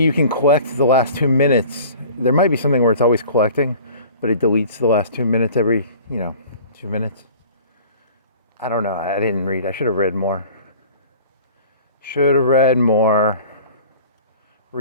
can collect the last 2 minutes. There might be something where it's always collecting, but it deletes the last 2 minutes every, 2 minutes. I don't know. I didn't read. I should have read more. Should have read more.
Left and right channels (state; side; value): inverted; both; correlation -0.45